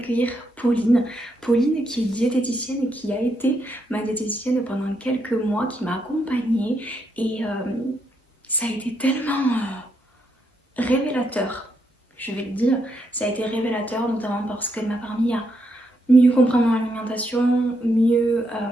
Pauline. Pauline qui est diététicienne et qui a été ma diététicienne pendant quelques mois, qui m'a accompagnée et ça a été tellement révélateur, je vais le dire, ça a été révélateur notamment parce qu'elle m'a permis à mieux comprendre mon alimentation, mieux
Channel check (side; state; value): both; normal; correlation 0.78